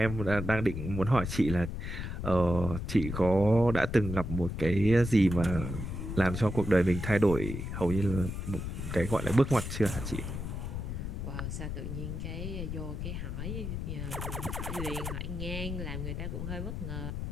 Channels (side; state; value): left; noise; rumble, 5 dB below the sound